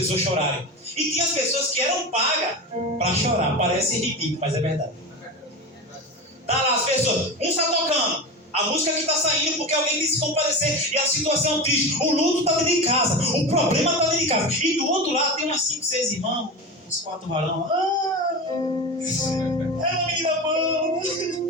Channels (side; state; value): both; normal; correlation 0.25